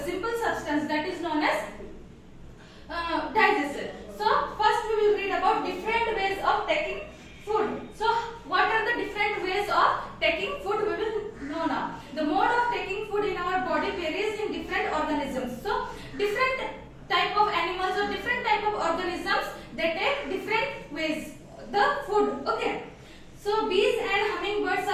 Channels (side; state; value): both; identical; correlation 1.00